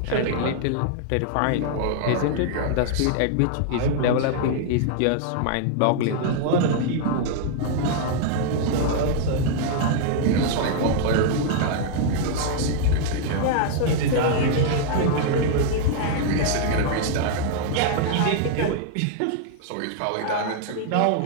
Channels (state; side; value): different; both; correlation -0.01